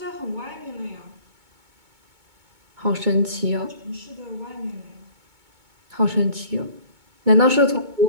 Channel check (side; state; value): left; late; 2.2 ms